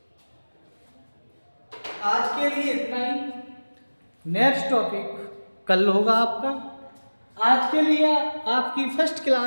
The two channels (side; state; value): both; inverted; correlation -1.00